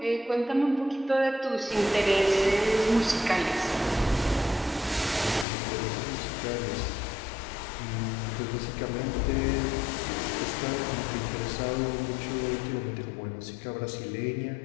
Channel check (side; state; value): right; drops out; at 5.5 s